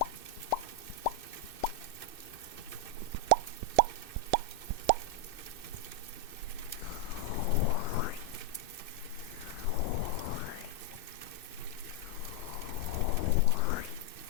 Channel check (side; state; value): right; late; 2.6 ms